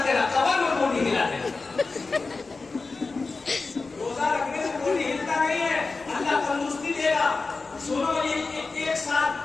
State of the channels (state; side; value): quieter; right; 4.0 dB